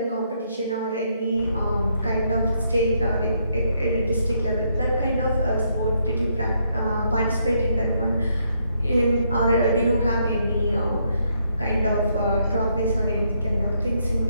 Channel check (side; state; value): both; inverted; correlation -0.74